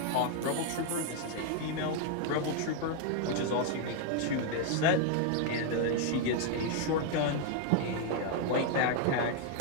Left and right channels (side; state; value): both; different; correlation 0.00